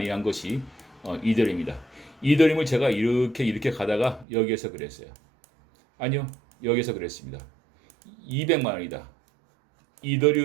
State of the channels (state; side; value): drops out; left; at 4.2 s